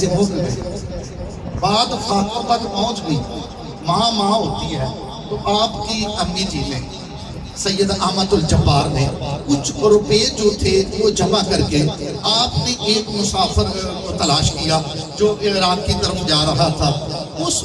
ہو گئے, بعد خاکوں تک پہنچ گئی. ماں ہوتی ہے, تو آپ کی امی جی نے سید احمد الجبار نے کچھ روپے جو تھے وہ جمع کر کے آپ نے ایک مسافر کو تلاش کیا جو عراق کی طرف جا رہا تھا. اس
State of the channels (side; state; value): both; identical; correlation 1.00